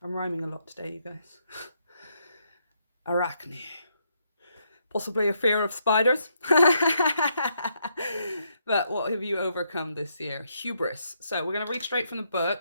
I'm rhyming a lot today, you guys. Arachne. Possibly a fear of spiders. But what have you overcome this year? Hubris. So we're going to read straight from the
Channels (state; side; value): inverted; both; correlation -0.76